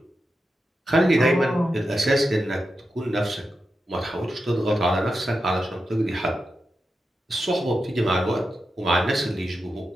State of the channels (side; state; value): both; normal; correlation 0.89